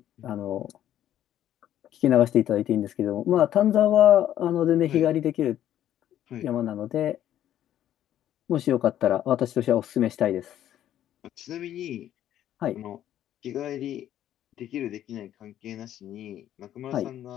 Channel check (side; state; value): right; quieter; 11.6 dB